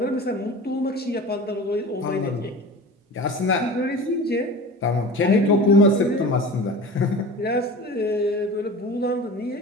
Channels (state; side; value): normal; both; correlation 0.35